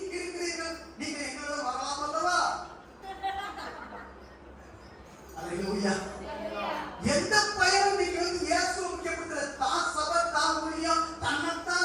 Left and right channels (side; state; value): both; identical; correlation 1.00